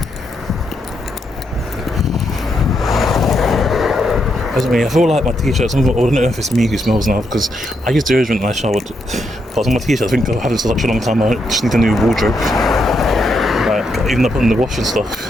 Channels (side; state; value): both; normal; correlation 0.80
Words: I feel like my t-shirts, I don't know if it's me who smells now, because I used deodorant when I showered, but on my t-shirts, I think I've had it for such a long time, I just need a new wardrobe. Like, even up in the wash and stuff,